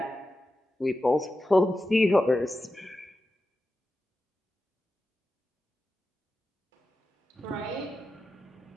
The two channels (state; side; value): normal; both; correlation 0.92